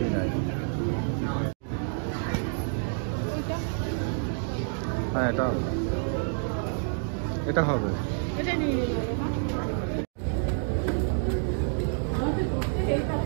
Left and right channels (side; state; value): left; silent; 59 dB below the other